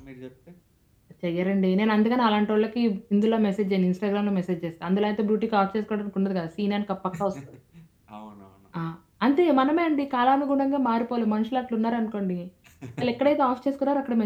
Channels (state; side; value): identical; both; correlation 1.00